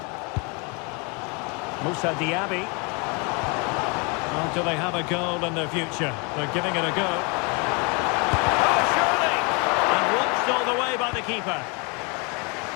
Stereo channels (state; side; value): quieter; right; 31.8 dB